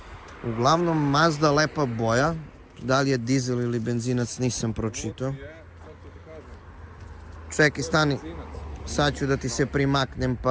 Uglavnom Mazda lepa boja. Da li je dizel ili benzinac nisam pročitao. Čekaj, stani. Sad ću da ti se primaknem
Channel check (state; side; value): identical; both; correlation 1.00